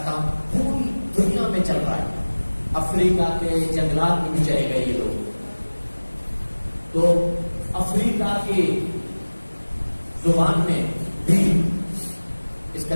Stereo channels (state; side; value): inverted; both; correlation -1.00